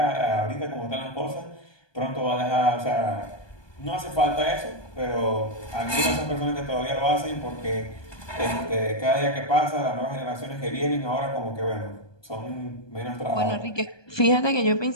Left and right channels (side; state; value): right; late; 1.2 ms